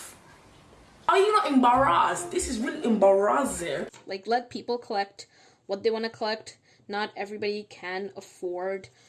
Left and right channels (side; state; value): both; identical; correlation 1.00